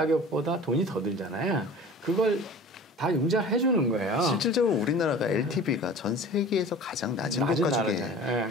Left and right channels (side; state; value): both; normal; correlation 0.41